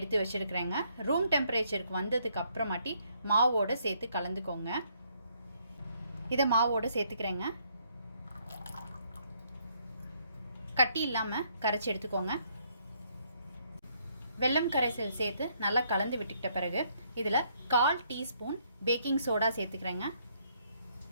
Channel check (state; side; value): inverted; both; correlation -0.70